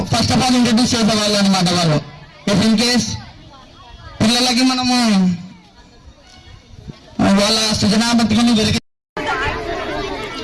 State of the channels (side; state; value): both; identical; correlation 1.00